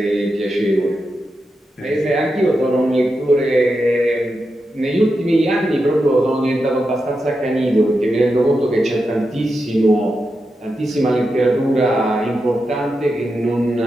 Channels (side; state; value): both; normal; correlation 0.88